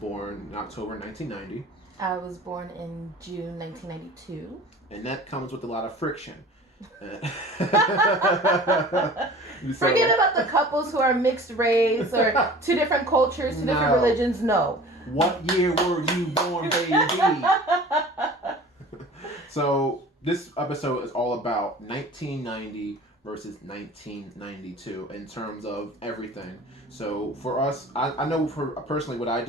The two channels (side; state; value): both; normal; correlation 0.43